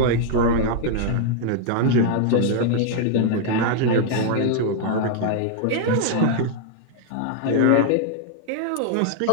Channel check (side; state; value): both; different; correlation -0.01